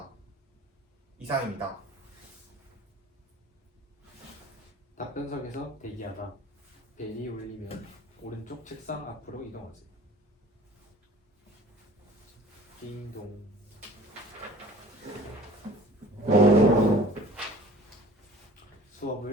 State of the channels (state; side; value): normal; both; correlation 0.47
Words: 이상입니다. 답변석에서 대기하다. 벨이 울리면 오른쪽 책상 앞으로 이동하세요. 딩동.